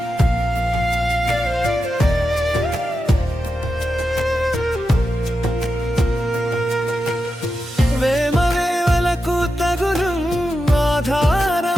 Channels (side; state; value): both; normal; correlation 0.89